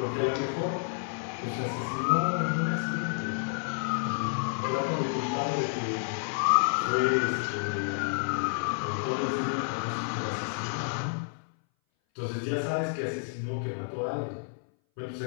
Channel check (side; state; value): right; silent; 58 dB below the other